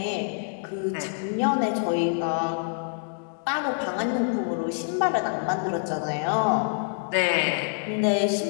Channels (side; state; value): right; silent; digital silence